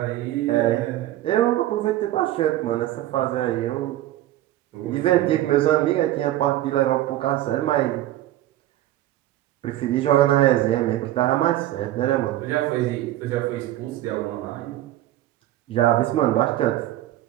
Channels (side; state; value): left; quieter; 14.4 dB